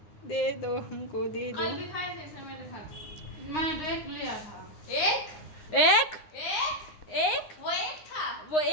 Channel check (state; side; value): late; right; 9.7 ms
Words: दे दो हमको, दे दो। कल भी खाए थे समय दिखा। मैंने तो एक लिया था। एक एक एक एक वो एक था। वो